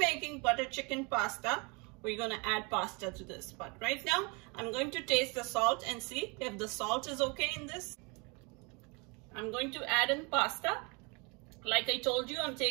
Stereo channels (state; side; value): quieter; left; 30.0 dB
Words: butter chicken pasta, we're gonna add pasta to this. But right now, I'm going to taste the salt and see if the salt is okay in this. I'm going to add in pasta. Like I told you, I'm